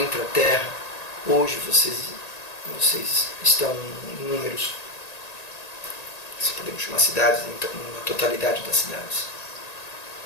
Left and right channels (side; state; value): right; late; 1.9 ms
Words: hoje vocês estão em números, se podemos chamar cidades, na totalidade das cidades?